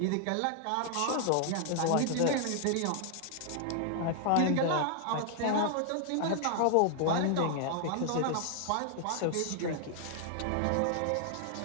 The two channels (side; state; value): both; different; correlation 0.00